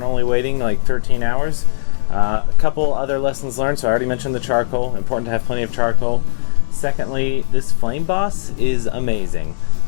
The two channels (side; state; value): right; silent; digital silence